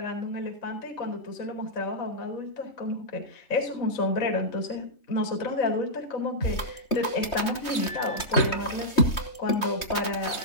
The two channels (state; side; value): late; right; 3.2 ms